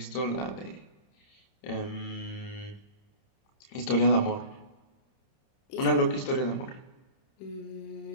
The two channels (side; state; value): right; late; 30 ms